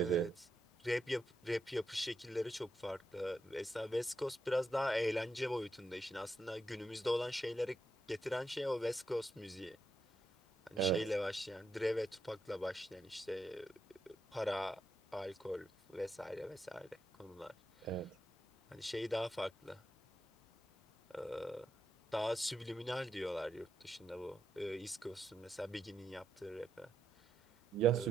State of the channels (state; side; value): normal; both; correlation 0.84